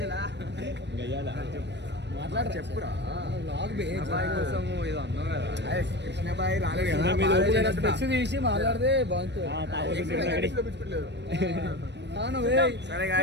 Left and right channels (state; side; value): late; left; 0.51 ms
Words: చెప్పురా. బాయ్ కోసం ఏదో అన్నావు కదా. కృష్ణ బాయ్ రాలేడు కదా. తీసి మాట్లాడితే బాగుంటుంది.